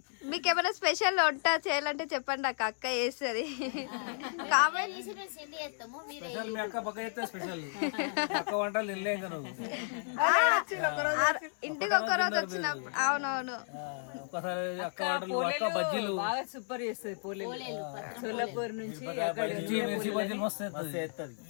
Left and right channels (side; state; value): right; silent; digital silence